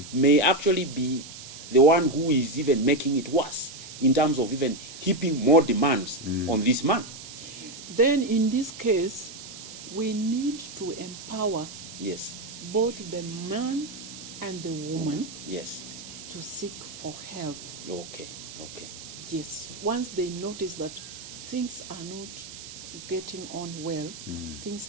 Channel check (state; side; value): noise; right; hiss, 13 dB below the sound